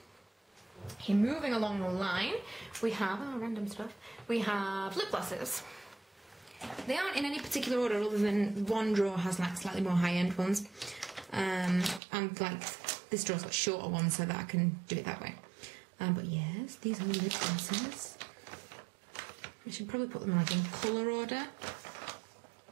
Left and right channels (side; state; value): left; drops out; at 12.0 s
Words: Okay, moving along the line, we have random stuff. We have lip glosses. They aren't in any particular order other than one drawer has like slightly more high-end ones. And like this drawer's got shorter ones so that I can do it that way. But yes, these are lip glosses. I should probably put them like in colour order.